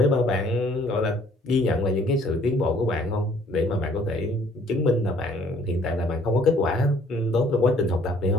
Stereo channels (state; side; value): normal; both; correlation 0.60